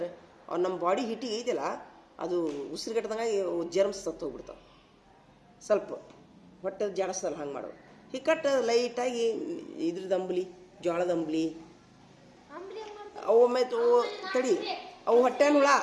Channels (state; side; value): identical; both; correlation 1.00